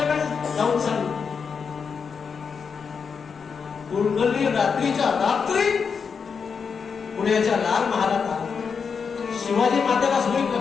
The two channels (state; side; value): quieter; right; 5.9 dB